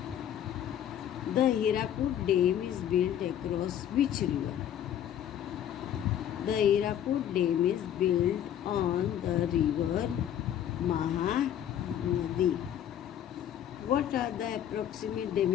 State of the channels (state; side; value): quieter; right; 10.4 dB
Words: The Hirakud Dam is built across which river? The Hirakud Dam is built on the river Mahanadi. What are the approximate